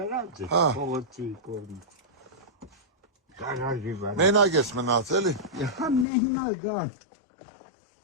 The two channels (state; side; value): drops out; right; at 6.1 s